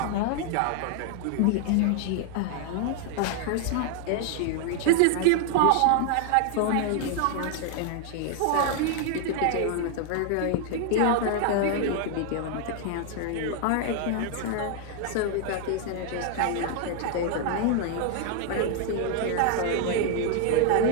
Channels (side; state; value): both; different; correlation 0.00